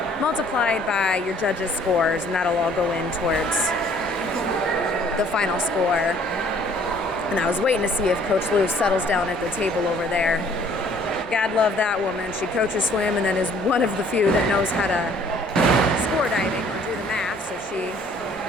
multiplied by your judges' scores, and that'll all go in towards the final score. And I was waiting to see if Coach Lou settles down at the table over there. God love that woman. She coaches swim and then is one of the few that knows how to score diving or do the math, so she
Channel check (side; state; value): both; normal; correlation 0.58